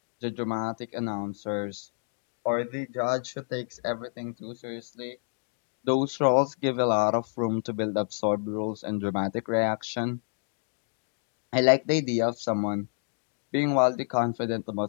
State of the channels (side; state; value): right; silent; digital silence